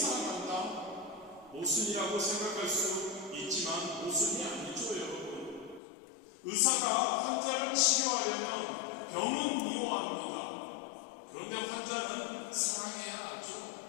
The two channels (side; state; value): right; drops out; at 5.8 s